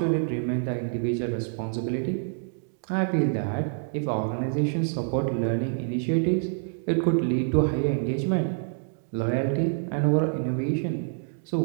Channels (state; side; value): silent; left; digital silence